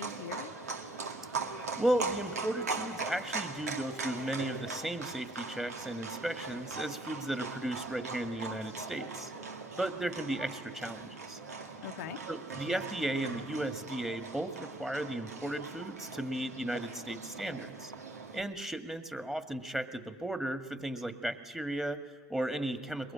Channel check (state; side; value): normal; both; correlation 0.66